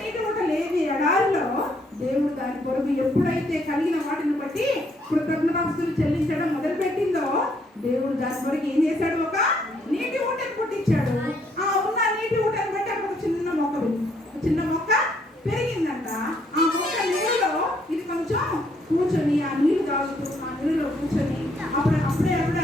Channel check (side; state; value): both; normal; correlation 0.70